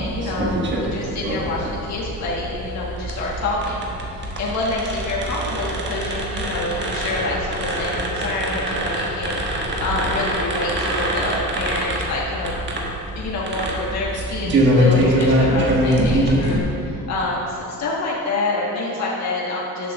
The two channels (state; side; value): normal; both; correlation 0.27